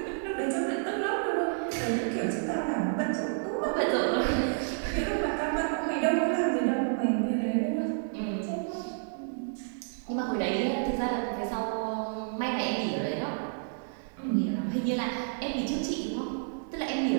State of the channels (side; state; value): left; silent; digital silence